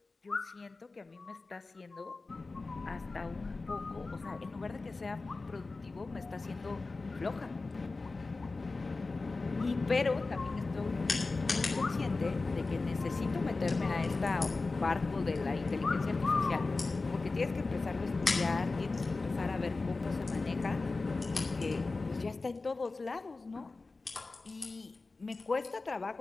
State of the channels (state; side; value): quieter; right; 3.7 dB